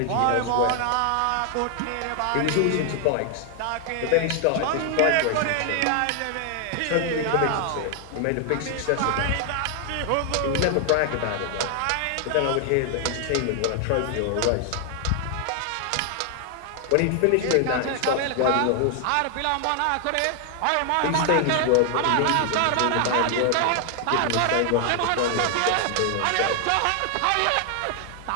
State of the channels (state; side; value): different; both; correlation 0.00